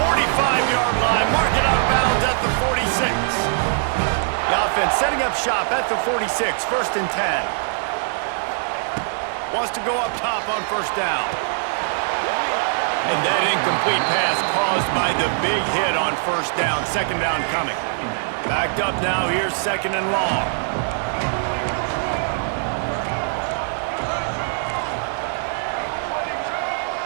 line. Mark it out of bounds at the 46. The offense setting up shop at the 46, first and 10. Wants to go up top on first down. And that incomplete pass caused by the big hit on first down. Second down coming. Backed up now, here's second and long.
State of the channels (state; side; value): silent; left; digital silence